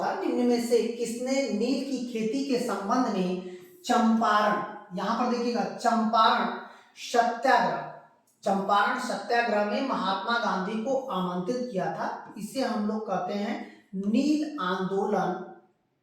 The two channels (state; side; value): identical; both; correlation 1.00